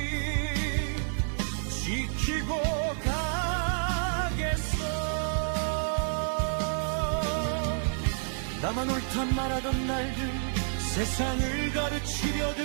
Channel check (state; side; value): silent; left; digital silence